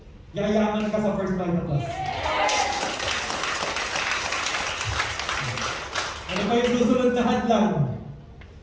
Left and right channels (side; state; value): both; identical; correlation 1.00